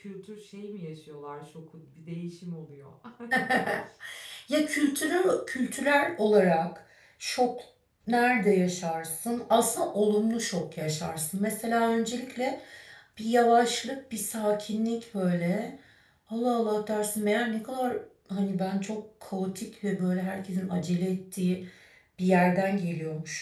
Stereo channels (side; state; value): both; identical; correlation 1.00